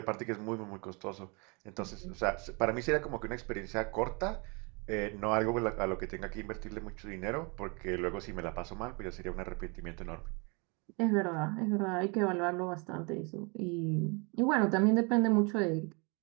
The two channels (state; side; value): quieter; left; 31.3 dB